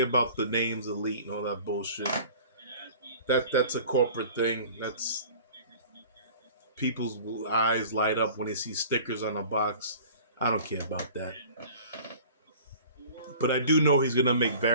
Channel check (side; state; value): both; inverted; correlation -0.45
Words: about the names elite and all that bullshit. That's a corporate thing. That's people's eyes light up when they see stickers on a box. I don't care about that. But I do know he's gonna make